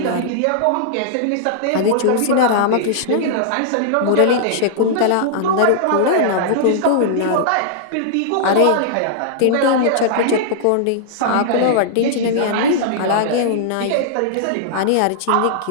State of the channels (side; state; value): both; different; correlation -0.01